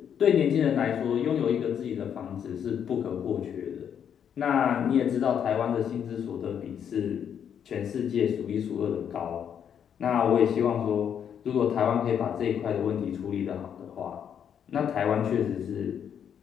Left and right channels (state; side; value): quieter; right; 8.4 dB